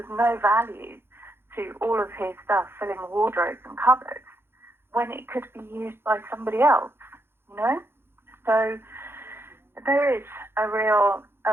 no value to all of his stuff filling wardrobes and cupboards when it could be used by somebody else, So there is a real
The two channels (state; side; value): late; left; 0.11 ms